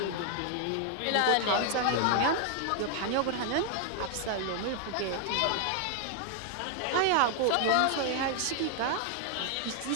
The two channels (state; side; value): different; both; correlation 0.00